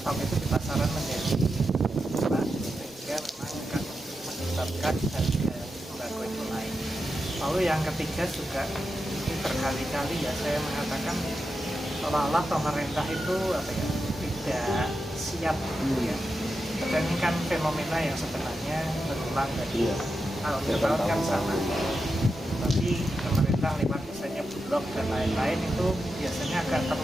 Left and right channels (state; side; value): normal; both; correlation 0.88